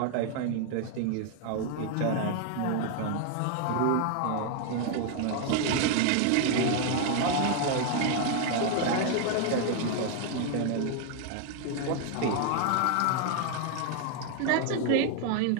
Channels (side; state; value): both; different; correlation 0.00